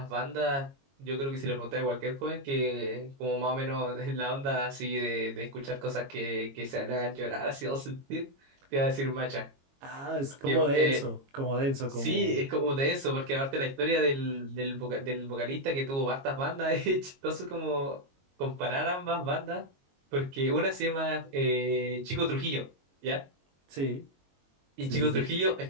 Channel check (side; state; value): left; late; 22 ms